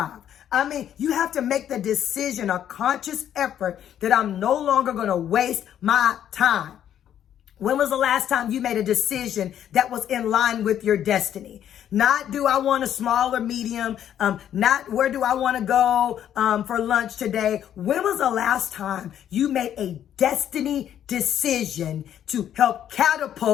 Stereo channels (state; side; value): quieter; right; 10.2 dB